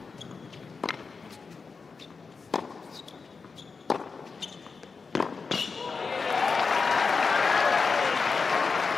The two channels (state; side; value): quieter; right; 4.8 dB